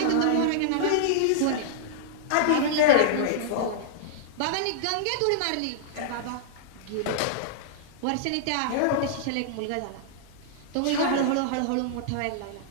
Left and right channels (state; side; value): different; both; correlation -0.01